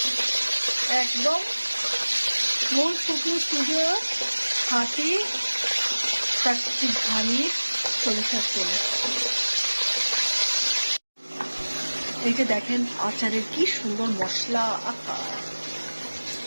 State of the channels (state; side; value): inverted; both; correlation -1.00